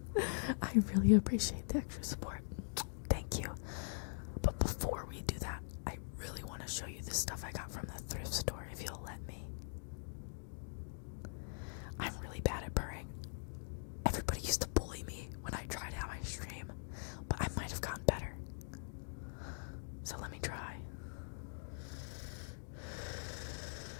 really appreciate the extra support. Thank you. But before we do that, I really want to show you the stuff I got from the thrift store, if you'll let me. I'm really bad at purring. Everybody used to bully me when I tried out my stream, but I might have gotten better. So let me try.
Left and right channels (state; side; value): silent; right; digital silence